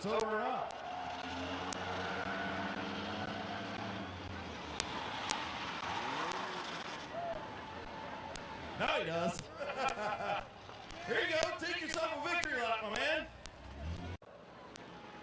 over or not. Now he does. Here you go. Take yourself a victory lap, my man.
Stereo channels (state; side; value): identical; both; correlation 1.00